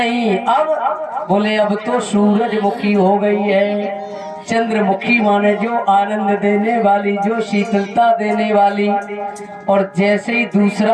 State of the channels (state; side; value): identical; both; correlation 1.00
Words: अब बोले अब तो सूरजमुखी हो गई है। चंद्रमुखी माने जो आनंद देने वाली, जो शीतलता देने वाली। और जैसे ही